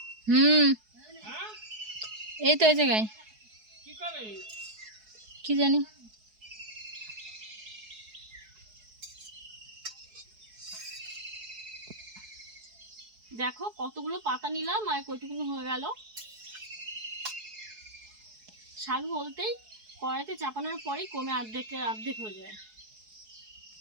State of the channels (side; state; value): left; late; 4.7 ms